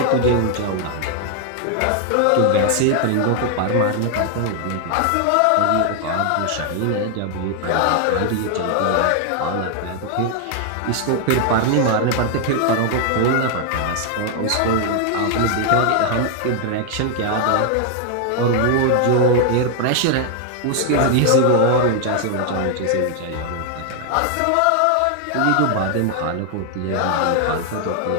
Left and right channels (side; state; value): both; different; correlation 0.00